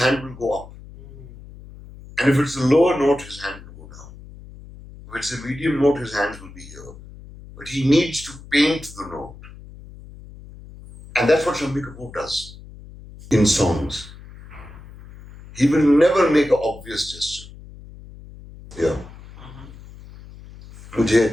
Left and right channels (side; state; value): left; noise; hum, 18 dB below the sound